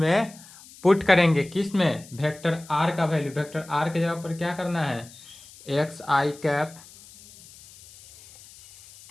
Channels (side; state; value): left; noise; hiss, 21 dB below the sound